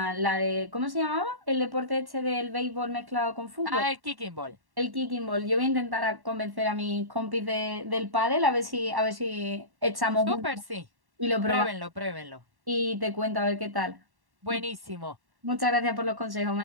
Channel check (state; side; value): late; left; 1.1 ms